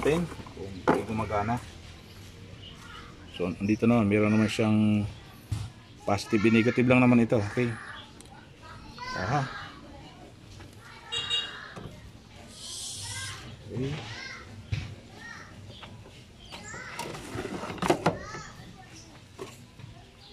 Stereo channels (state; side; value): identical; both; correlation 1.00